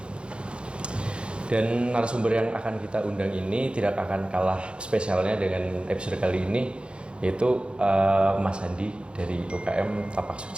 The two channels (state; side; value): late; left; 0.056 ms